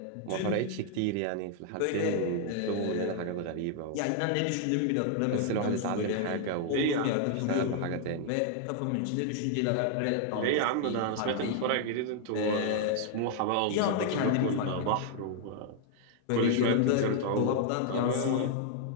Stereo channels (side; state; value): both; different; correlation 0.00